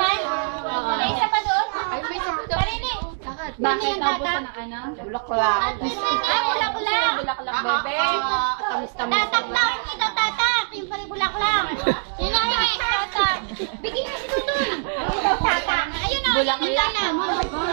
May isa pa doon? Ay, may isa pa doon. Parinig. Bakit naubusan ng ano? Bulaklak. Bulaklak. Bulaklak, bebe. Tamis-tamis. Tatak lang. Ikaw tatak. Yung pala bulaklak. Yun na yung tatak. Bigyan na si Tutoy. Tatak. Ayun na. Bulaklak.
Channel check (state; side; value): silent; left; 63 dB below the other